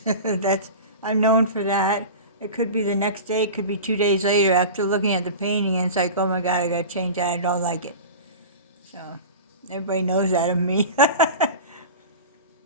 I'm known for that. It could be the next day. It could be 2 days later after looking at the painting, and it's like, oh my God, I got to change that. I don't like it. So everybody knows that of me.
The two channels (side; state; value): both; inverted; correlation -0.32